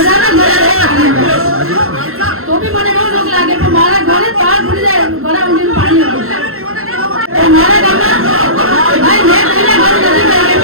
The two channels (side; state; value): left; late; 0.62 ms